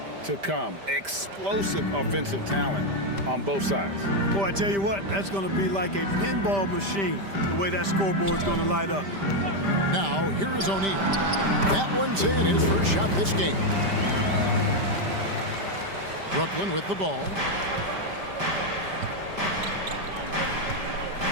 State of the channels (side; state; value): left; late; 5.1 ms